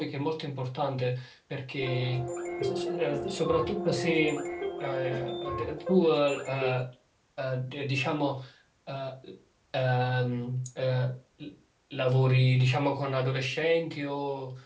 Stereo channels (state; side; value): identical; both; correlation 1.00